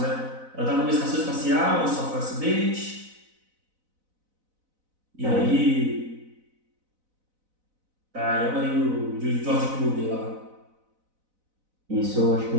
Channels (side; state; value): left; late; 4.0 ms